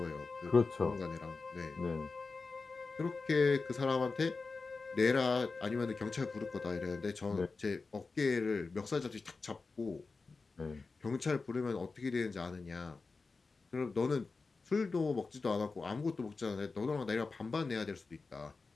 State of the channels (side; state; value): right; quieter; 4.1 dB